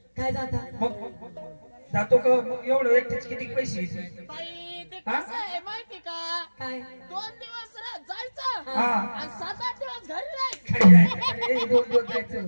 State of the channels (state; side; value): inverted; both; correlation -1.00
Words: काय जाता मग जातो का एवढं एकट्याचे किती पैसे बाई ते कसं आहे माहिती का काय 2 दिवस जायचं हा आणि 7-8 दिवस घरी राहायचं